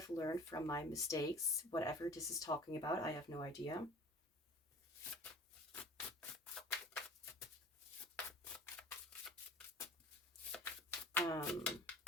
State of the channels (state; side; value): normal; both; correlation 0.45